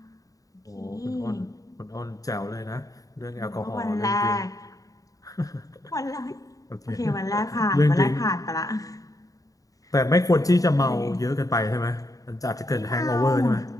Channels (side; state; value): right; late; 0.17 ms